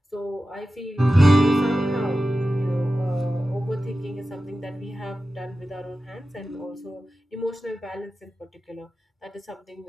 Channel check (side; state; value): both; normal; correlation 0.94